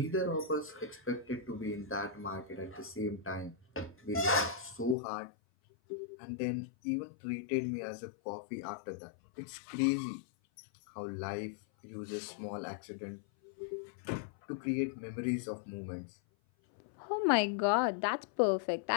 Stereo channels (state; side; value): drops out; right; at 5.0 s